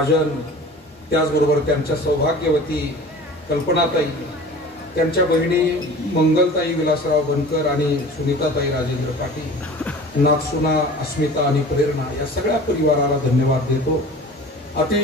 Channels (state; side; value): normal; both; correlation 0.41